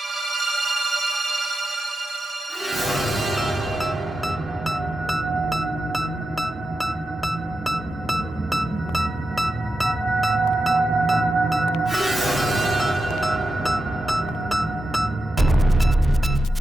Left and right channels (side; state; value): both; normal; correlation 0.89